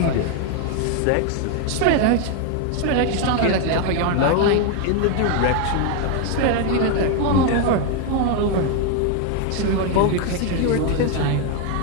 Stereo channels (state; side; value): different; both; correlation 0.01